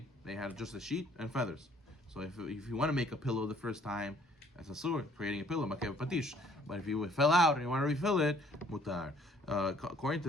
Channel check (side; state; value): both; normal; correlation 0.60